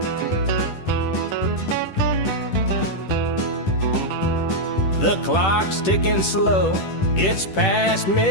The clock's ticking slow, it's past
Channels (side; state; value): right; late; 10 ms